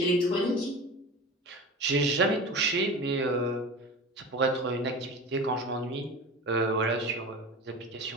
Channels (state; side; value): normal; both; correlation 0.32